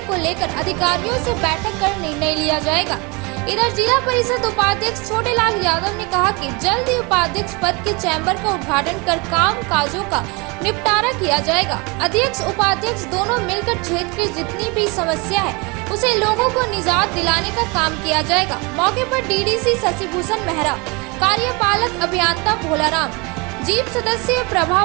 को लेकर अधिकारियों से बैठक कर निर्णय लिया जाएगा। इधर जिला परिषद उपाध्यक्ष छोटेलाल यादव ने कहा कि जल्द ही उपाध्यक्ष पद के चैम्बर का उद्घाटन कर काम काजों का निपटारा किया जाएगा। अध्यक्ष उपाध्यक्ष दोनों मिलकर क्षेत्र की जितनी भी समस्या है उसे लोगों को निजात दिलाने का काम किया जाएगा। मौके पर डीडीसी शशिभूषण मेहरा, कार्यपालक अभियंता भोलाराम, जीप सदस्य प्रभा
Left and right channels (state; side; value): quieter; left; 28.4 dB